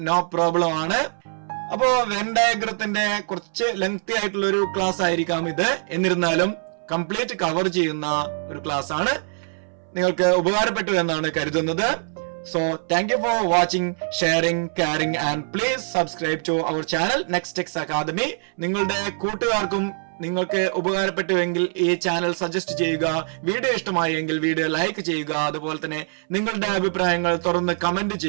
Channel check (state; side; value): silent; left; 63 dB below the other